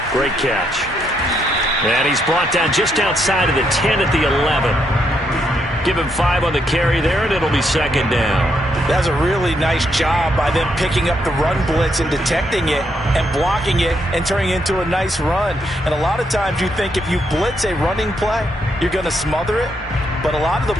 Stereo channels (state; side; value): normal; both; correlation 0.77